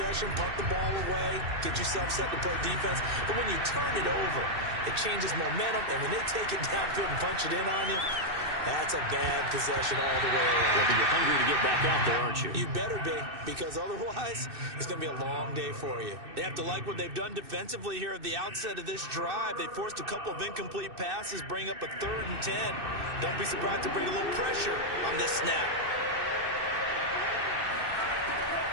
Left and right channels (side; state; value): left; late; 2.6 ms